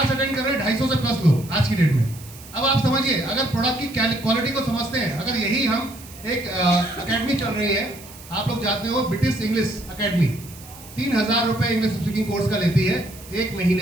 अटेंड कर रहे हैं 250 से प्लस लोग आज की डेट में। अब आप समझिए, अगर प्रोडक्ट की क्वालिटी को समझते हैं, अगर यही हम एक अकेडमी चल रही है, आप लोग जानते हो ब्रिटिश इंग्लिश अकेडमी 3000 रुपये इंग्लिश स्पीकिंग कोर्स का लेती है 1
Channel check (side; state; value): right; noise; hiss, 19 dB below the sound